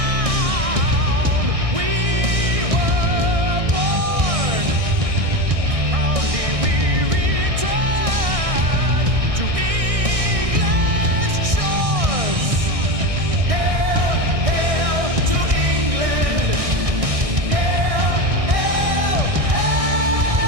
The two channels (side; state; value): left; late; 1.6 ms